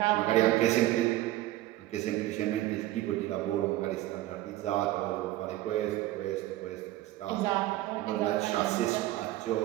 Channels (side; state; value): left; quieter; 15.9 dB